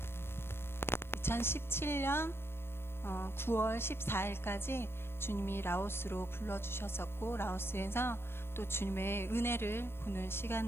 9월 14일까지 주님이 라오스로 불러주셨었고, 라오스에서 또 주님의 은혜를 보는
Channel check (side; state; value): right; late; 0.12 ms